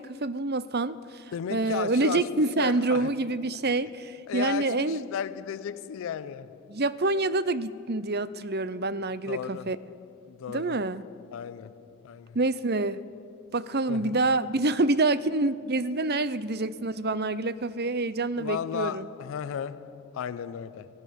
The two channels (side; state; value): both; normal; correlation 0.07